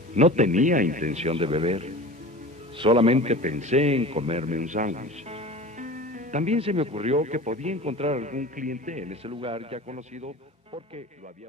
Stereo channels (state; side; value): normal; both; correlation 0.36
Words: No tenía intención de beber. Solamente pensé en comerme un sándwich. También se me ocurrió que podía encontrar algún cliente en ese lugar ya conocido porque lo había